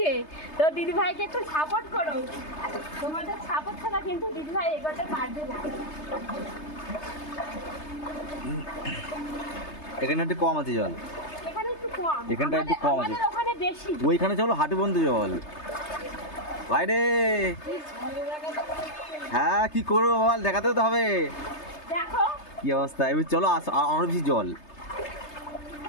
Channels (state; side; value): late; right; 3.3 ms